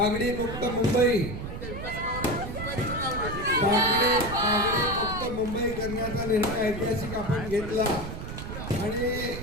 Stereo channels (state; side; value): noise; right; rumble, 7 dB below the sound